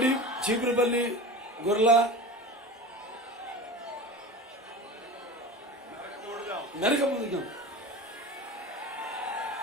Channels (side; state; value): both; normal; correlation 0.32